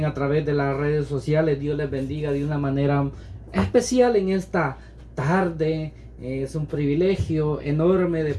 a través de las redes sociales, Dios les bendiga de una manera especial en esta tarde. Es un privilegio enorme de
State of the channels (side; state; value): both; identical; correlation 1.00